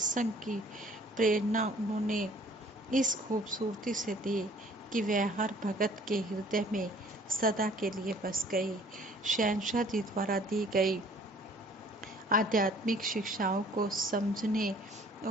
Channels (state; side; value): normal; both; correlation 0.55